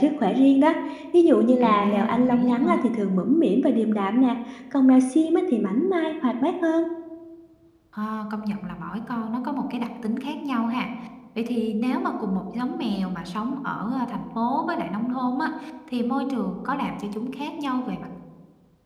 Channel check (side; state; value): both; identical; correlation 1.00